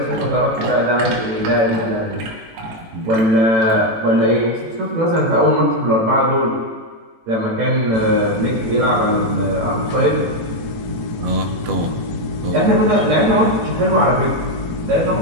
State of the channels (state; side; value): late; left; 18 ms